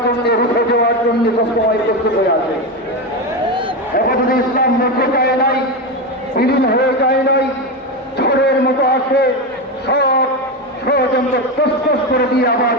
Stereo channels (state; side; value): normal; both; correlation 0.15